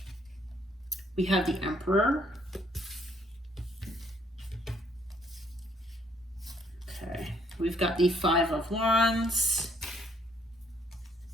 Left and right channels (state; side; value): normal; both; correlation 0.68